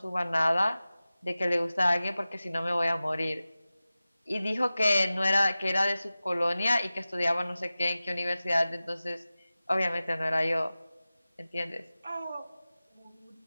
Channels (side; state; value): both; inverted; correlation -0.96